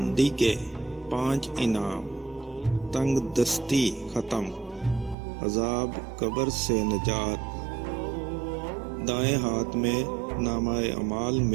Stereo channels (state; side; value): drops out; left; at 5.2 s